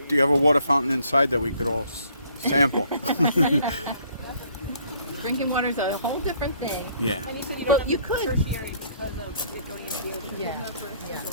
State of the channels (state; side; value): inverted; both; correlation -0.62